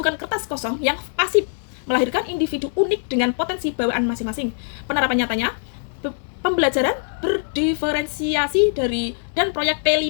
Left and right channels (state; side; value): silent; right; digital silence